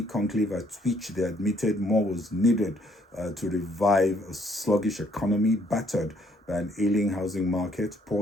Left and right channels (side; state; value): both; normal; correlation 0.66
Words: conclave at which they admitted more was needed to revive a sluggish economy battered by an ailing housing market,